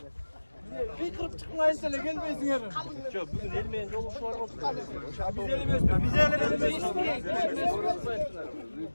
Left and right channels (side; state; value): both; inverted; correlation -1.00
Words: bir kırıp çıkmayın sene gelmeyin yarın. Çok bugün elmeyen yolu şu var olsun. Biz elemiyoruz.